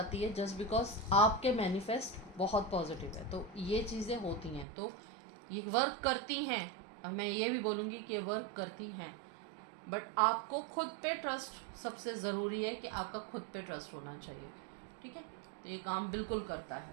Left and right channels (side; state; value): left; drops out; at 4.7 s